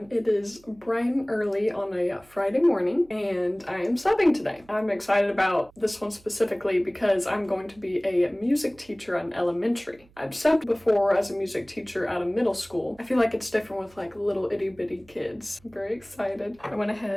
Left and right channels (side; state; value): right; noise; hum, 28 dB below the sound